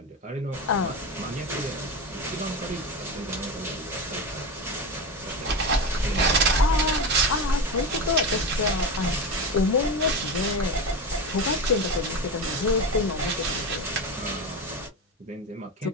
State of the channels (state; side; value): normal; both; correlation 0.20